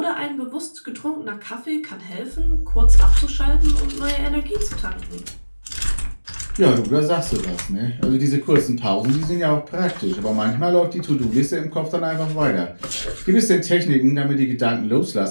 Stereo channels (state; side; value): inverted; both; correlation -1.00